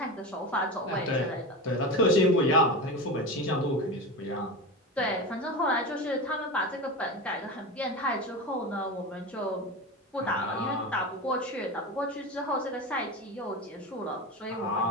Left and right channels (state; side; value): normal; both; correlation 0.24